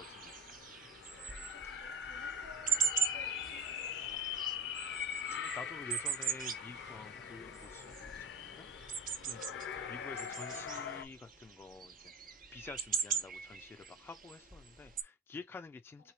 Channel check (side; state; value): both; normal; correlation 0.36